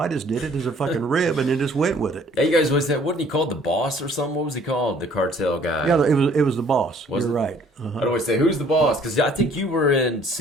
just did it as a fucking rib and then just went with it. Yeah, you guys wasn't he called the boss or something? What was he called? The cartel guy. Yeah, it was the boss. You're right. I'd always say, who's the boss? Because I think you were in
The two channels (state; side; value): normal; both; correlation 0.57